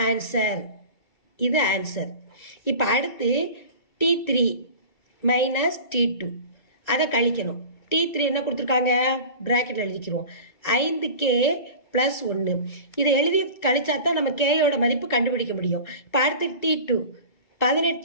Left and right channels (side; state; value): right; late; 1.9 ms